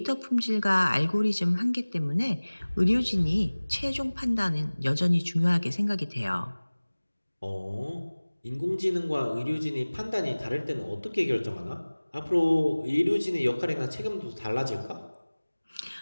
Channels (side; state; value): both; inverted; correlation -1.00